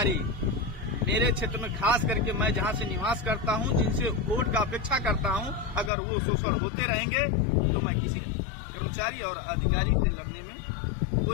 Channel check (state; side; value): drops out; right; at 5.9 s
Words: मेरे क्षेत्र में, खास करके मैं जहां से निवास करता हूं, जिनसे वोट का अपेक्षा करता हूं, अगर वो शोषण होते रहेंगे तो मैं किसी कर्मचारी और अधिकारी से लड़ने में